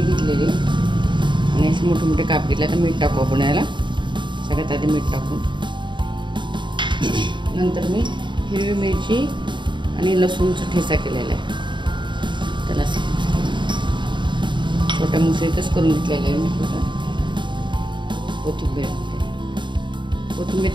घेतलेली आहे आणि असे मोठे मोठे काप घेतले। तर मीठ टाकू आपण याला, सगळ्यात आधी मीठ टाकू, नंतर मी हिरवी मिरची आणि लसूणचा ठेचा केलेला आहे, त्याला छोट्या मुसळीतच करून घेतलेलं आहे मी। कोथिंबीर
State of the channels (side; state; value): left; late; 0.23 ms